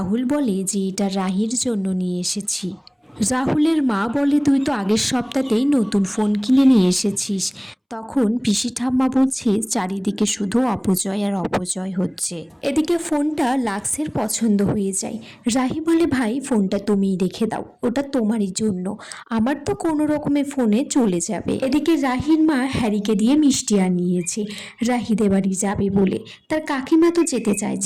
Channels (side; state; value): both; identical; correlation 1.00